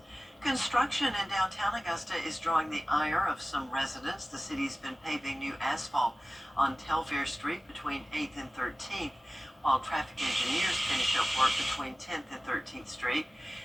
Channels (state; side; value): normal; both; correlation 0.96